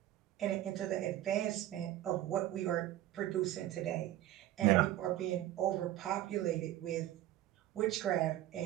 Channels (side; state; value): left; quieter; 13.9 dB